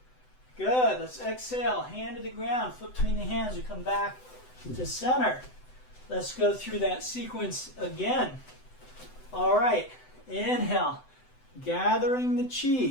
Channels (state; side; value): late; right; 7.9 ms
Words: Good. Let's exhale. Hand to the ground. Foot between the hands. We come back to center. Let's go through that sequence again. All right. Inhale. Gathering the